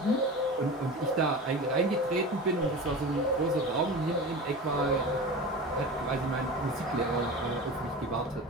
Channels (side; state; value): both; normal; correlation 0.31